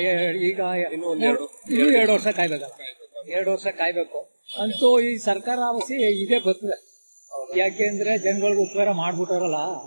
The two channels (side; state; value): both; inverted; correlation -1.00